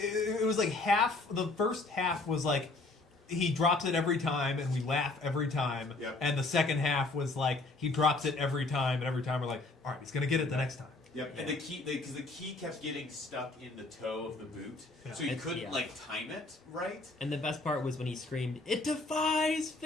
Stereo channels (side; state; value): right; quieter; 3.3 dB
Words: was like half. The first half was like he drops it every time, and we laugh every time. Yep. And the second half was like he drops it every time, and every time we're like, all right, he's gonna get it the next time. Yep, and because the key kept getting stuck in the toe of the boot, so you couldn't like time it right. And the best part was when he screamed, "It defies